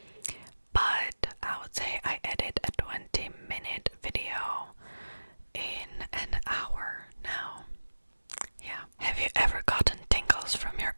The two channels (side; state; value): both; inverted; correlation -1.00